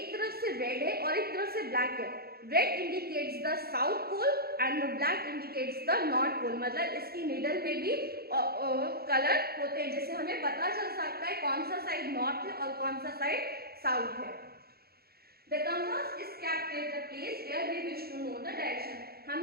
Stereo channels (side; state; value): left; late; 0.45 ms